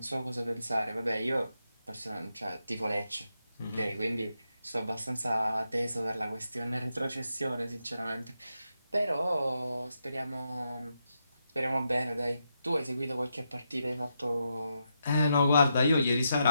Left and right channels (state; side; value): inverted; both; correlation -0.84